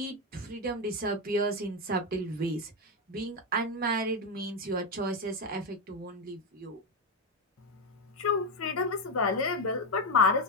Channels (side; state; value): both; normal; correlation 0.08